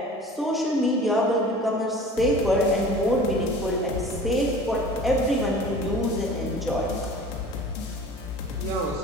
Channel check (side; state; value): both; normal; correlation 0.43